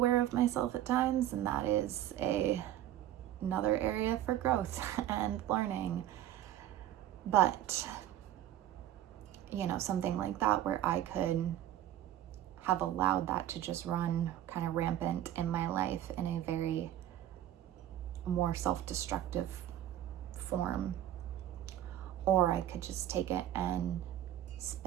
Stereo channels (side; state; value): left; quieter; 12.3 dB